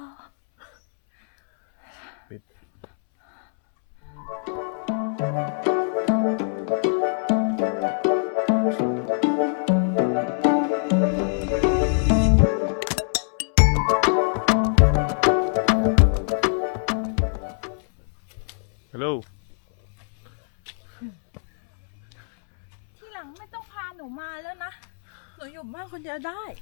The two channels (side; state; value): right; silent; 63 dB below the other